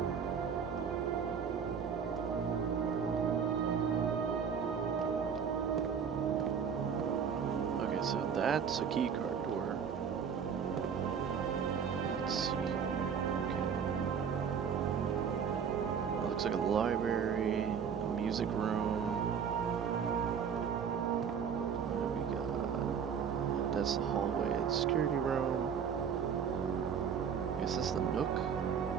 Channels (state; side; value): quieter; left; 7.1 dB